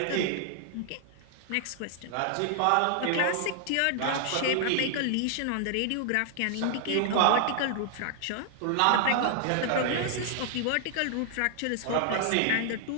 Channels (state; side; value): different; both; correlation 0.00